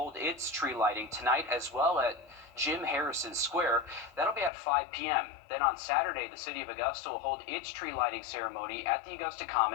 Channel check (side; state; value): right; drops out; at 4.5 s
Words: its tree lighting tonight as well at Jim Harrison Square. That'll be at 5 p.m. Then on Saturday, the city of Augusta will hold its tree lighting ceremony at the Augusta